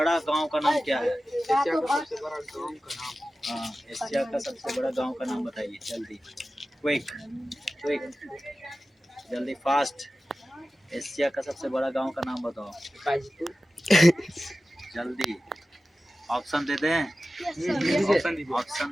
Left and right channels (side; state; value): both; normal; correlation 0.95